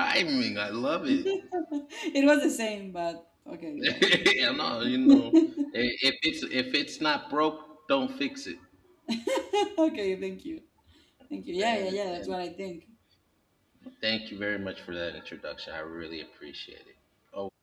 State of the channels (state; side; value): identical; both; correlation 1.00